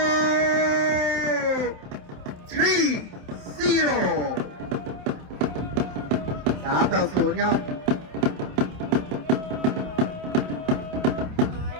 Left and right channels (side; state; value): left; late; 27 ms